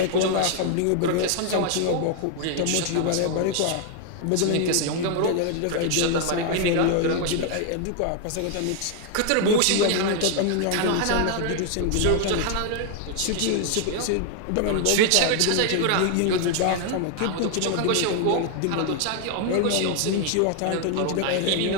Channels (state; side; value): different; both; correlation 0.00